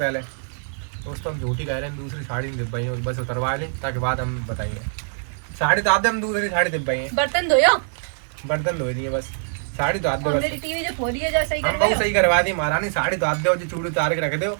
दोस्तों हम झूठी कह रहे हैं, दूसरी साड़ी नहीं दिब्बाई है, बस उतरवा लें ताकि बाद हम बताइए। साड़ी तो आते हम दूसरी साड़ी दिब्बाई है। बर्तन धोयो। बर्तन धो लिए बस, साड़ी तो आते और बस। मेरी टीवी जो फोड़ी है जैसे ही हम कर बहुत रहे सही करवा दी महारानी, साड़ी तो आते हो जो चूड़ी उतार के रख दो।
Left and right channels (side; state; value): left; silent; digital silence